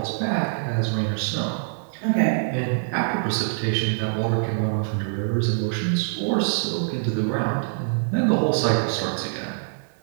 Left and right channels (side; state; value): left; silent; 62 dB below the other